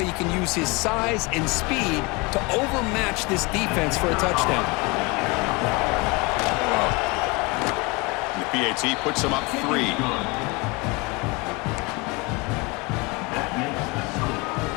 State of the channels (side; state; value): right; quieter; 26.4 dB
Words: can use his size and speed to overmatch this defense for a touchdown. And the PAT puts him up 3.